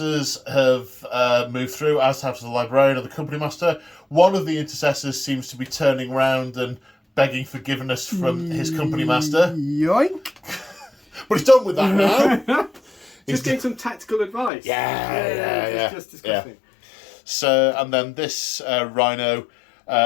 have moved through, as have the Librarian and the Company Master. One of the Intercessors seems to be turning round and begging forgiveness from his Company Master. Yoink! But he's done with that now. Just getting some tactical advice. Yeah. Just disgusting. Yeah. So, and then this Rhino,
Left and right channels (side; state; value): right; drops out; at 14.5 s